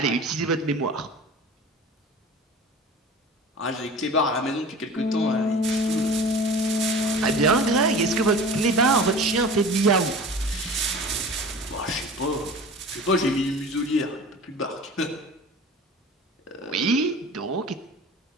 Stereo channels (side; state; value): both; normal; correlation 0.39